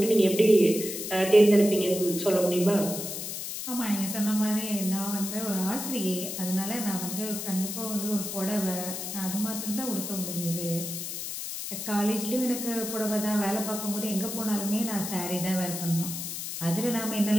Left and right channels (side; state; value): left; noise; hiss, 6 dB below the sound